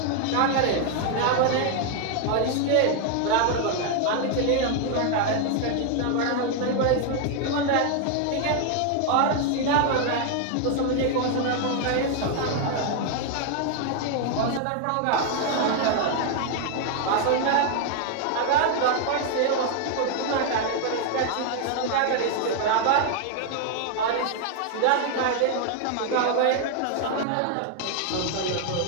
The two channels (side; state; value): both; different; correlation 0.00